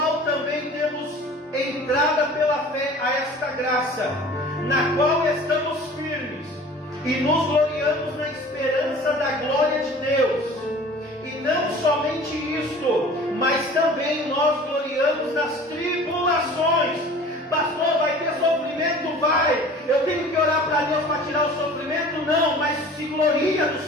também temos entrada pela fé a esta graça, na qual estamos firmes, e nos gloriamos na esperança da glória de Deus. E não somente isto, mas também nós gloriamos nas tribulações. Pastor, vai ter sofrimento? Vai. Eu tenho que orar para Deus para tirar o sofrimento? Não, mas se gloria do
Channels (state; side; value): normal; both; correlation 0.44